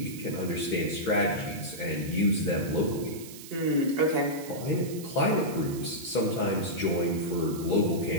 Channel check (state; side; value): noise; right; hiss, 15 dB below the sound